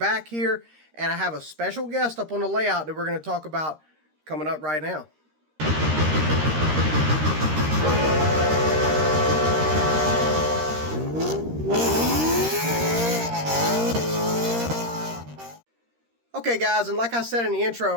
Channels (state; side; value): late; left; 13 ms